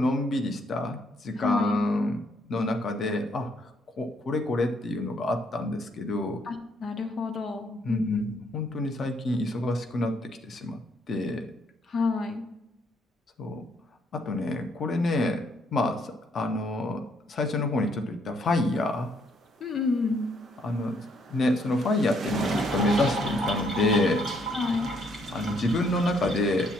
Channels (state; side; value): normal; both; correlation 0.70